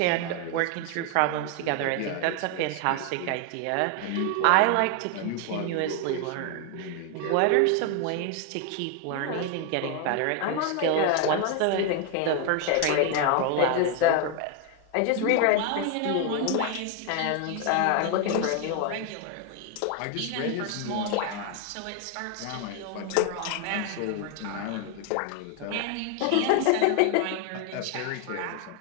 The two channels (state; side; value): different; both; correlation 0.01